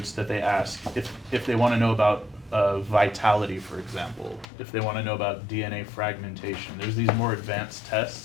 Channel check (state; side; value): drops out; right; at 4.5 s